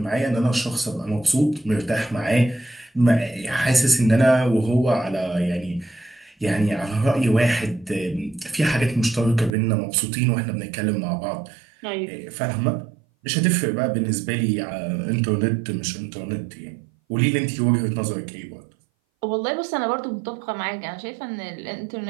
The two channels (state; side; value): drops out; left; at 9.5 s